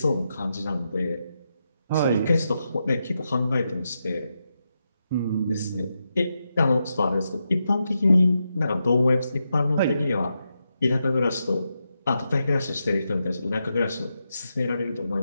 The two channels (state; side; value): inverted; both; correlation -0.86